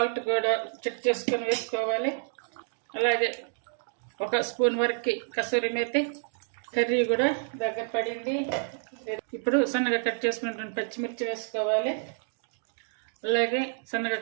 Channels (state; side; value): silent; left; digital silence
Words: కూడా చెక్ చేసుకొని వేసుకోవాలి. అలాగే 1 స్పూన్ వరకు కసూరి మేతి. కర్రీ కూడా దగ్గర పడింది. ఇప్పుడు సన్నగా కట్ చేసుకున్నటువంటి పచ్చిమిర్చి వేసుకోవాలి. అలాగే సన్నగా